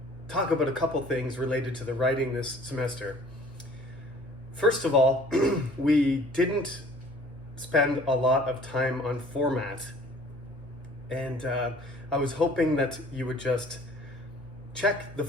talk about a couple things related to the writing this semester. First of all, we didn't spend a lot of time on format, and I was hoping that you would just check the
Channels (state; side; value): normal; both; correlation 0.52